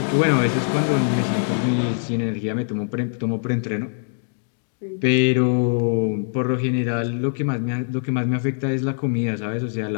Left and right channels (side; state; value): right; silent; digital silence